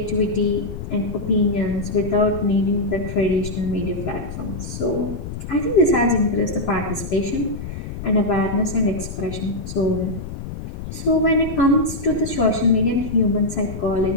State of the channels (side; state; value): left; noise; rumble, 9 dB below the sound